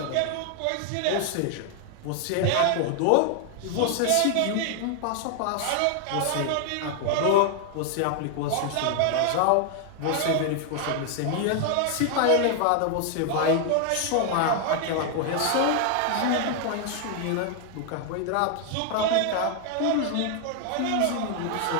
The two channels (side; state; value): both; different; correlation 0.00